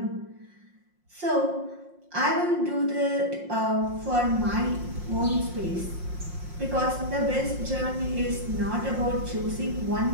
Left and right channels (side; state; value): left; late; 5.6 ms